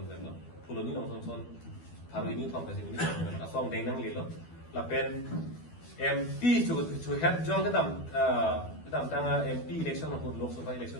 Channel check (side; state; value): right; late; 12 ms